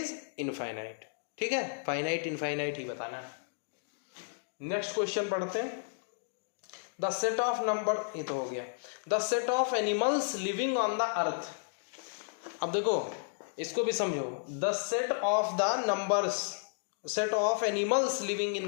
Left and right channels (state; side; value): silent; right; digital silence